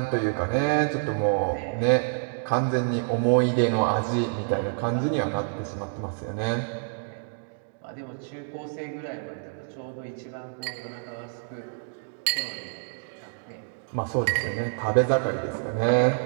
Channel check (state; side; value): silent; left; digital silence